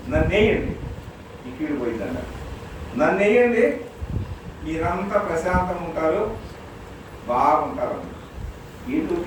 నన్ను వేయండి, ఈ కీడు పోయిందన్న, నన్ను వేయండి, మీరంతా ప్రశాంతంగా ఉంటారు, బాగుంటారు. వీళ్ళు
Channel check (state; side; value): identical; both; correlation 1.00